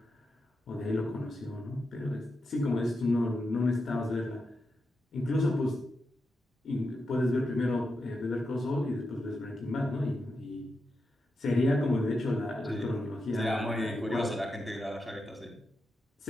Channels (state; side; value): normal; both; correlation 0.87